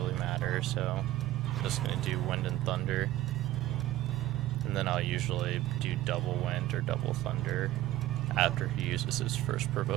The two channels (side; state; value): left; quieter; 14.9 dB